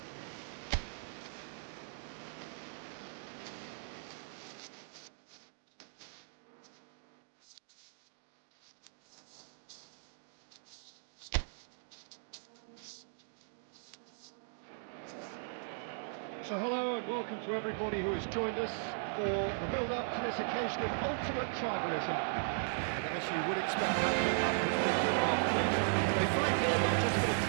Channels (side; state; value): left; silent; digital silence